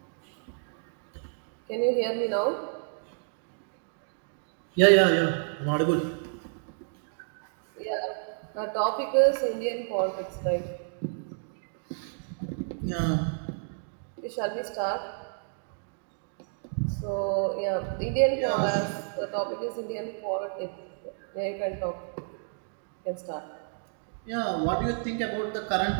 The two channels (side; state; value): left; silent; digital silence